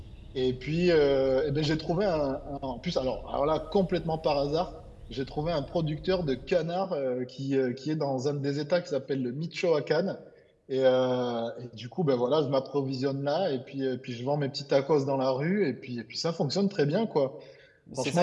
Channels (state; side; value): identical; both; correlation 1.00